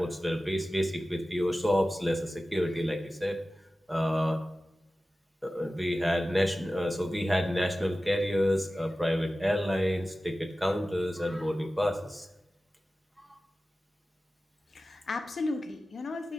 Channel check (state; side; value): normal; both; correlation 0.95